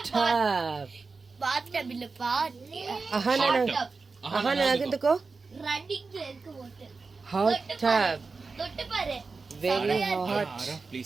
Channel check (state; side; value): quieter; left; 4.3 dB